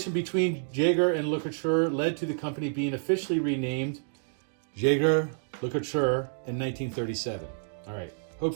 between Jaeger and LeCoultre led to the company being officially renamed Jaeger-LeCoultre in 1937. All right,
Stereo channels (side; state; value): left; silent; digital silence